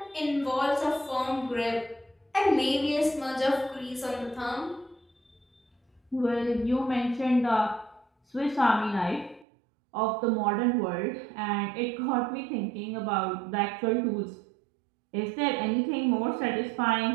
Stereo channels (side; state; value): left; drops out; at 9.5 s